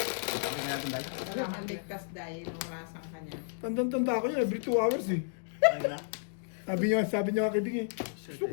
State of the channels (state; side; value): silent; right; digital silence